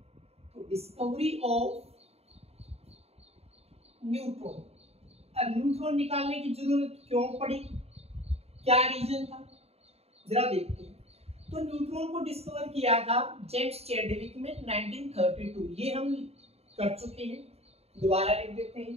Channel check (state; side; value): late; left; 0.30 ms